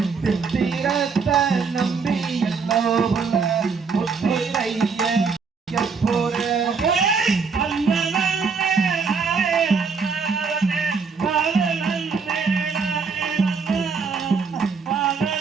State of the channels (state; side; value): quieter; left; 5.3 dB